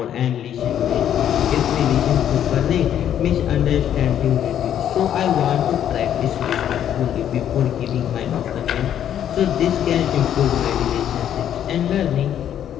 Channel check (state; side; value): quieter; right; 10.2 dB